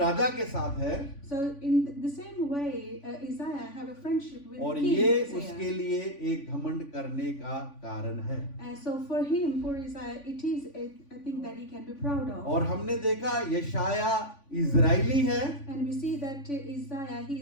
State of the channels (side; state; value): right; late; 3.5 ms